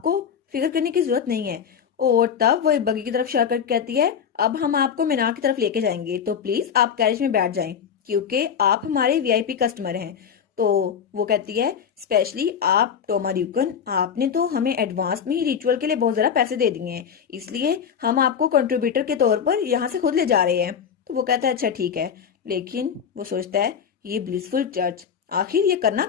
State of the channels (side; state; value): right; quieter; 7.5 dB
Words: फिक्र करने की जरूरत नहीं है। और तब वो एक बगी की तरफ इशारा करके कहती है अब हम आपको मीनार की तरफ लेके जाएंगे तो प्लीज आप कैरेज में बैठ जाएं क्योंकि आप हमारे वीआईपी कस्टमर हैं। तो वो कहती है स्पेशली आप टोमा ड्यूकन, आपने तो हमें एडवांस में ही रिचुअल के लिए बहुत ज़्यादा पैसे दे दिए हैं, इसलिए हम आपको कंट्रीब्यूटर के तौर पर यहाँ से खुद ले जा रहे हैं। तो वो कहता है अच्छा ठीक है, लेकिन वो सोचता है ये ब्लिसफुल चर्च आखिर ये करना